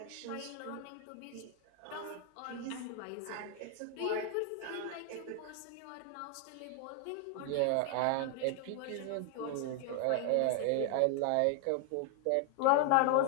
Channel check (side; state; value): both; different; correlation 0.00